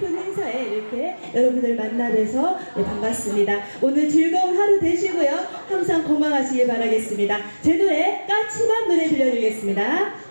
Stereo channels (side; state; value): both; inverted; correlation -1.00